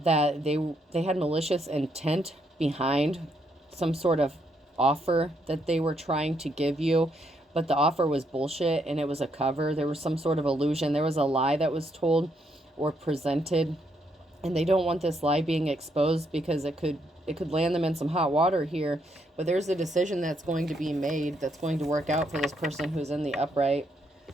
that they had malicious intent behind some sort of offer that they were trying to give you. But the offer was bullshit and it was a cover. There was some sort of illusion. There was a lie that was told or presented. And they don't want this lie being exposed because it could land them in some hot water here. But there's a decision that's going to be made that's going to work out for this person who's in the upright.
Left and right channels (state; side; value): normal; both; correlation 0.75